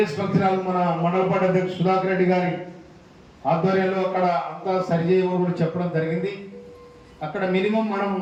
హాల్ మన మండల పార్టీ అధ్యక్షుడు సుధాకర్ రెడ్డి గారి ఆధ్వర్యంలో అక్కడ అంతా సరిచేయమని కూడా చెప్పడం జరిగింది. అక్కడ మినిమం మనం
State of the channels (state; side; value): identical; both; correlation 1.00